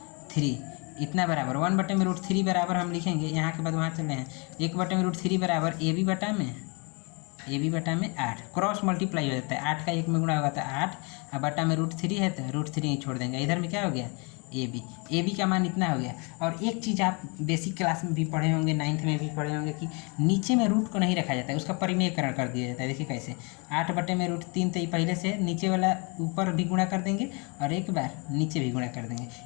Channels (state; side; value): quieter; right; 31.7 dB